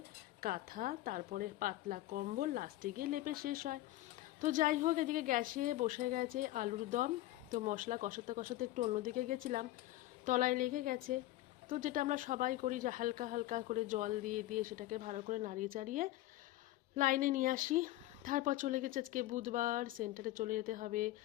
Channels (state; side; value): quieter; right; 16.2 dB